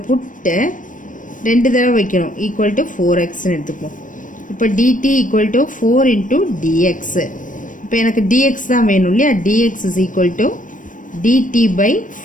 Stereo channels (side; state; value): right; late; 0.38 ms